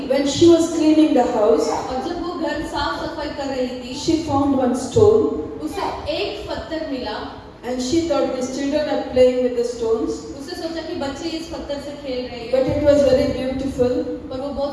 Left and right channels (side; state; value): both; identical; correlation 1.00